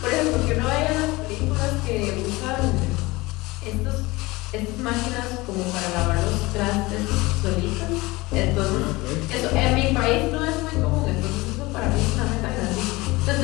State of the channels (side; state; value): right; quieter; 21.7 dB